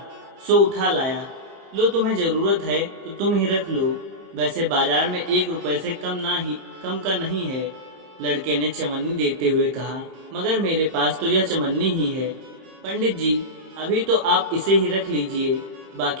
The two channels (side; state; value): left; late; 31 ms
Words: सो उठा लाया। लो, तुम्हें जरूरत है तो तुम ही रख लो। वैसे बाजार में 1 रुपए से कम का नहीं है। लड़के ने चवन्नी देते हुए कहा, मगर मेरे पास तो यह चमन्नी ही है। पंडित जी, अभी तो आप इसे ही रख लीजिए,